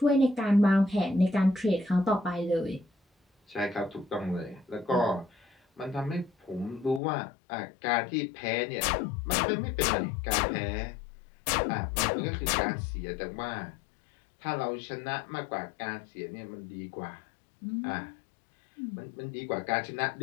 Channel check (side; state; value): right; drops out; at 7.0 s